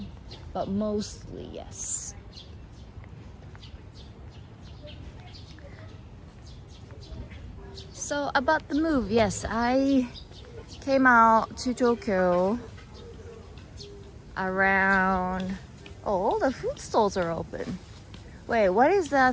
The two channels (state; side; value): identical; both; correlation 1.00